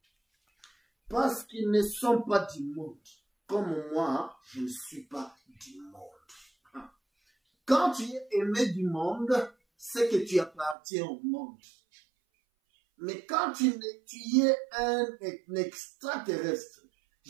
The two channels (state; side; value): drops out; left; at 10.8 s